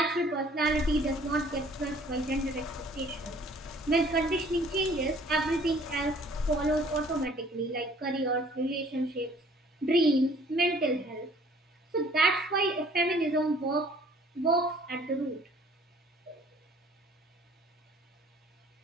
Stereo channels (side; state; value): both; normal; correlation 0.56